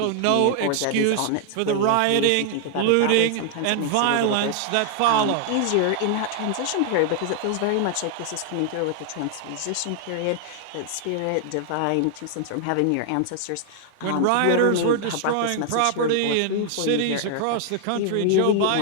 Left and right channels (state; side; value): different; both; correlation 0.00